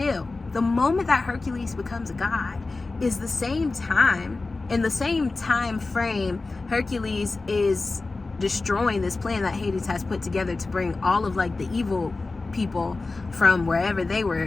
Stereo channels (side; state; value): right; quieter; 3.6 dB